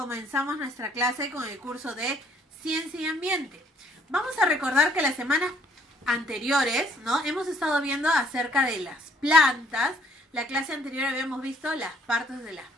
nuestra clase con el curso de Ciencia y Ambiente. Vamos a recordar que las semanas anteriores, ¿no? Hemos estado viendo acerca de las plantas. La clase anterior habíamos visto las partes de las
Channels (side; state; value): both; normal; correlation 0.63